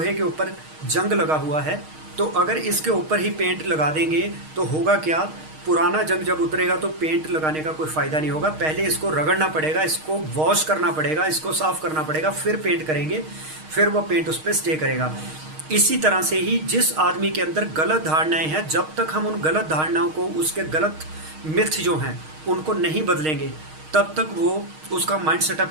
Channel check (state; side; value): late; left; 6.4 ms